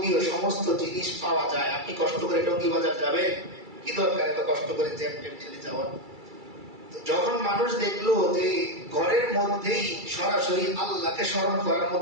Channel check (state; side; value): late; left; 2.3 ms